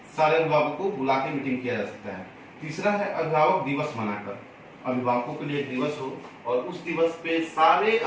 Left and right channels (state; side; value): identical; both; correlation 1.00